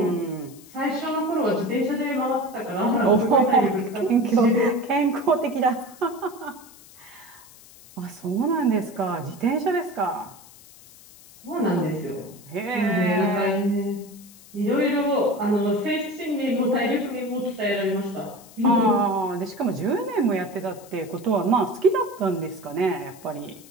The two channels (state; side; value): noise; left; hiss, 22 dB below the sound